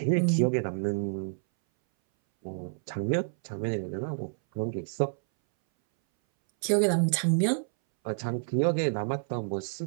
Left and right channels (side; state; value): left; silent; 59 dB below the other